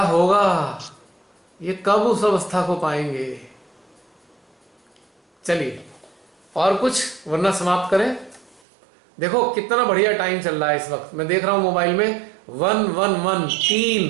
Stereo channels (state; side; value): drops out; left; at 8.6 s